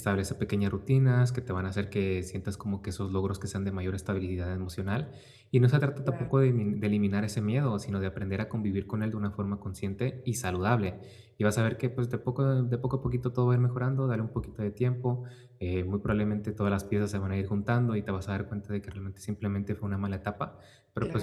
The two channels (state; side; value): identical; both; correlation 1.00